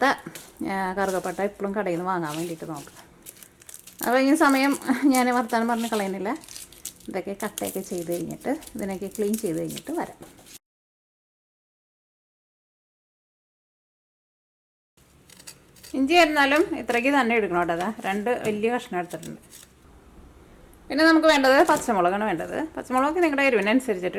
കറുകപ്പട്ട ഇപ്പോഴും കടയിൽ നിന്ന് വാങ്ങാൻ വേണ്ടിയിട്ട് നോക്കുക. അപ്പോൾ ഈ സമയം ഞാൻ വർത്താനം പറഞ്ഞ് കളയുന്നില്ല. ഇതൊക്കെ കട്ടയൊക്കെ ചെയ്ത് കഴിഞ്ഞിട്ട് ഇതിനൊക്കെ ക്ലീൻ ചെയ്ത് കഴിഞ്ഞിട്ട് വരാം. ഇഞ്ചി ആയിരുന്നാലും ഇത്രയ്ക്ക് തന്നെ എടുക്കണം കേട്ടോ. 2 വലിയ കഷ്ണം എടുത്തിട്ടുണ്ട്. പിന്നെ നമുക്ക് വേണ്ടത് പച്ചമുളകാണ് വേണ്ടത്. പച്ചമുളക് നിങ്ങളുടെ എരിവിനനുസരിച്ചിട്ട്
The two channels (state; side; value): identical; both; correlation 1.00